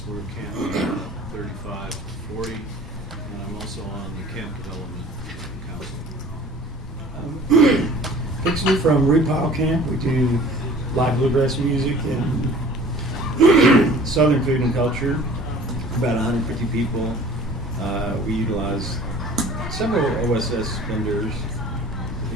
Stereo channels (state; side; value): normal; both; correlation 0.48